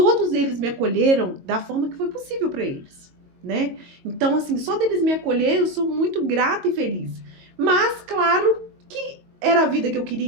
eles me acolheram da forma que foi possível pra eles, né? Então, assim, só deles me acolher, eu sou muito grata e feliz. Mas, claro que era a vida que eu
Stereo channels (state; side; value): late; left; 22 ms